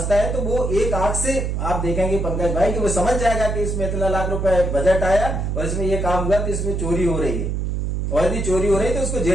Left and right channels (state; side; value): noise; right; hum, 1 dB below the sound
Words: है तो वो एक आंख से आप देखेंगे पंकज भाई कि वो समझ जाएगा कि इसमें इतना लाख रुपए बजट आया और इसमें ये काम हुआ तो इसमें चोरी हो रही है, और यदि चोरी हो रही है तो उसको